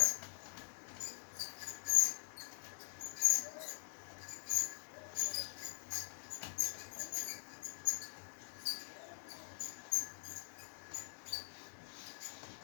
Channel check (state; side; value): silent; right; digital silence